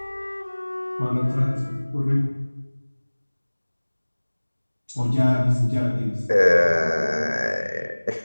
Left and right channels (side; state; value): both; inverted; correlation -1.00